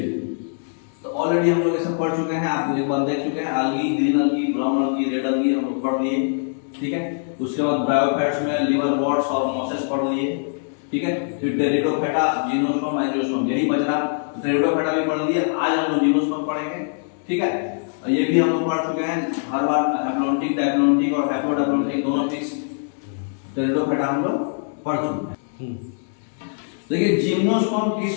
तो ऑलरेडी हम लोग ये सब पढ़ चुके हैं, आप एक बार देख चुके हैं, अलगी, ग्रीन अलगी, ब्राउन अलगी, रेड अलगी हम लोग पढ़ लिए, ठीक है। उसके बाद ब्रायोफाइट्स में लिवर वॉट्स और मॉसेस पढ़ लिए, ठीक है। फिर टेरिडोफाइटा, जिम्नोस्पर्म, एंजियोस्पर्म, यही बच रहा। टेरिडोफाइटा भी पढ़ लिए, आज हम लोग जिम्नोस्पर्म पढ़ेंगे, ठीक है। ये भी हम लोग पढ़ चुके हैं हर बार, हैप्लॉन्टिक, डायप्लॉन्टिक और हैप्लोडायप्लॉन्टिक दोनों फिक्स। टेरिडोफाइटा हम लोग पढ़ चुके हैं। देखिए जिम्नोस्पर्म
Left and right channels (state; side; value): silent; right; digital silence